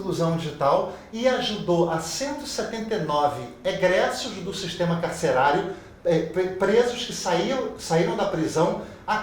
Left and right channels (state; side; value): identical; both; correlation 1.00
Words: digital e ajudou a 179 egressos do sistema carcerário, presos que saíram da prisão, a